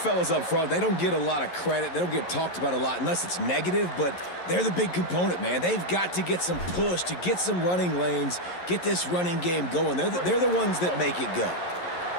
up front, they don't get a lot of credit. They don't get talked about a lot unless it's negative, but they're the big component, man. They've got to get some push, to get some running lanes, get this running game going. They're the ones that make it go.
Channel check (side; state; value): right; late; 11 ms